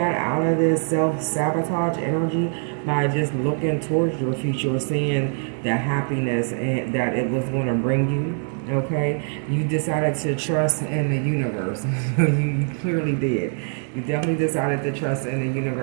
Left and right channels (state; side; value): silent; left; 56 dB below the other